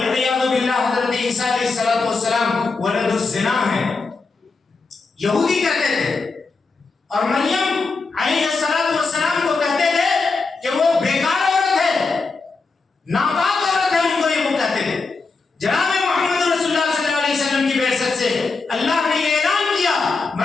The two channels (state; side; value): quieter; right; 4.1 dB